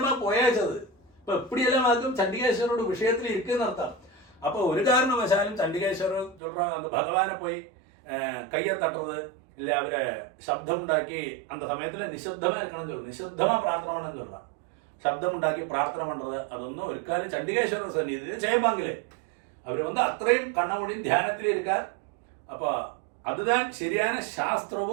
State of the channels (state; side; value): drops out; left; at 6.4 s